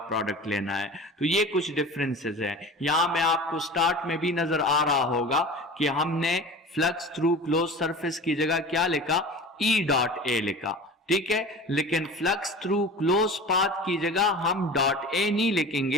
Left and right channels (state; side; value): normal; both; correlation 0.37